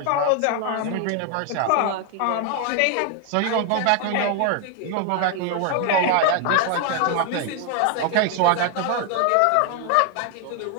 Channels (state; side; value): different; both; correlation 0.00